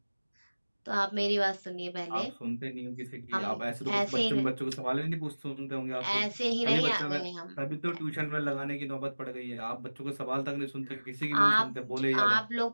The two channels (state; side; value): inverted; both; correlation -1.00